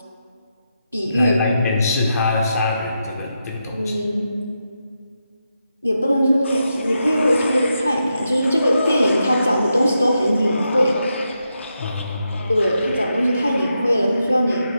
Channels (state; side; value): inverted; both; correlation -0.85